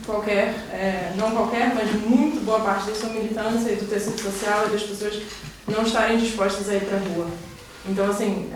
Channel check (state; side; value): identical; both; correlation 1.00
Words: não qualquer, mas muito boa parte da sua militância e do tecido social e das pessoas não estarem dispostas a ir para a rua. Então, assim,